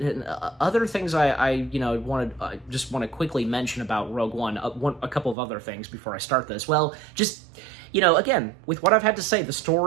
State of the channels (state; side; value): drops out; left; at 5.4 s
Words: things I just want to quickly mention about Rogue One, a couple of other things before I start this. Well, just, again, with what I've had to say, the